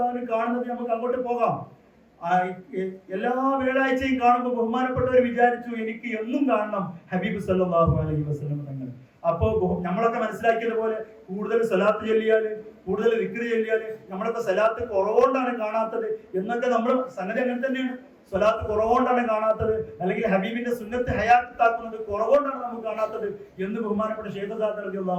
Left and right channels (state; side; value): identical; both; correlation 1.00